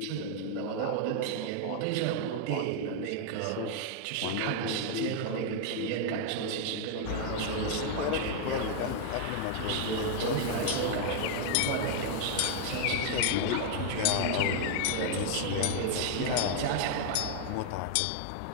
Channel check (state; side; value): different; both; correlation 0.00